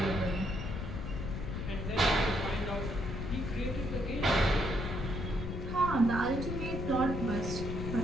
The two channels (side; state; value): left; noise; rumble, 4 dB below the sound